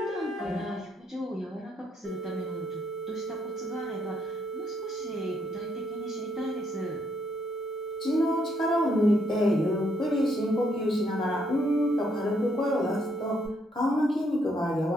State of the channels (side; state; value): both; normal; correlation 0.73